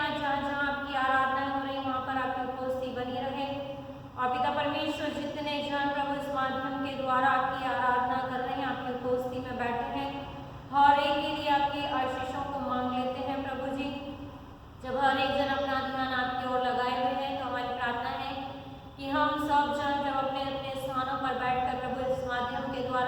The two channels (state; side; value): identical; both; correlation 1.00